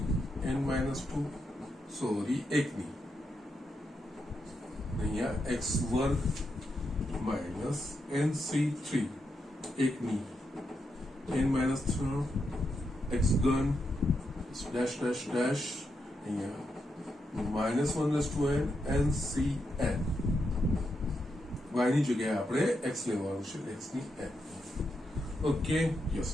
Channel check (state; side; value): normal; both; correlation 0.84